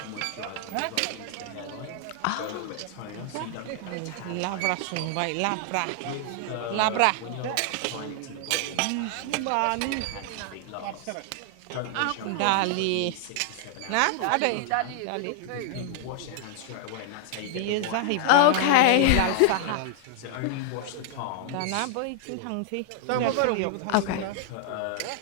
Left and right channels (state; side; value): different; both; correlation 0.00